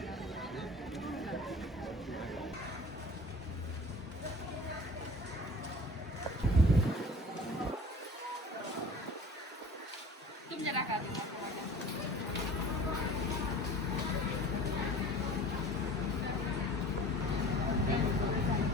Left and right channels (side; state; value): both; normal; correlation 0.43